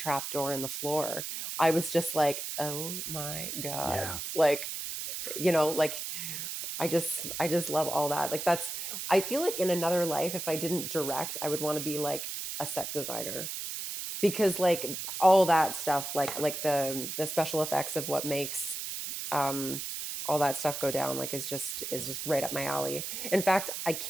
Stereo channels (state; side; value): noise; right; hiss, 5 dB below the sound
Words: door in the floor. I was just like, oh my God. Yeah, Like, like I just love all that. Like I feel like in another life, if I didn't direct, I would want to be like a set designer because like all that stuff like the special effects of what makes um all that stuff go down like is just right up my alley. In fact, I